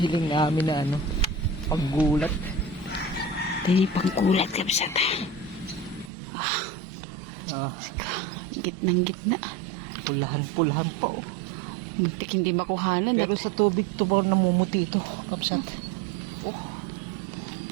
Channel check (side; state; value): left; drops out; at 6.1 s